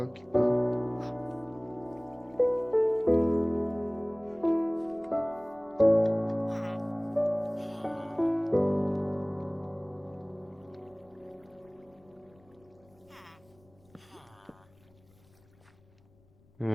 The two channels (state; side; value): noise; left; rumble, 30 dB below the sound